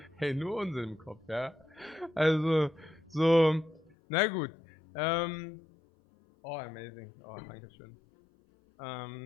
Hey, nur Unsinn im Kopf, ja. Also, so, na gut. Oh, amazing. Oh, danke schön.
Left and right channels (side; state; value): right; drops out; at 3.9 s